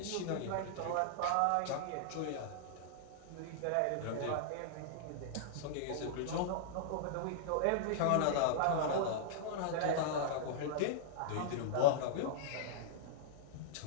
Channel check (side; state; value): both; different; correlation -0.01